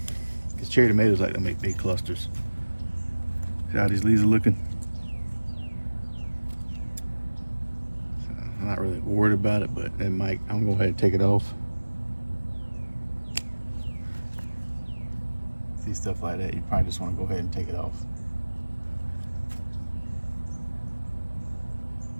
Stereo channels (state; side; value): inverted; both; correlation -1.00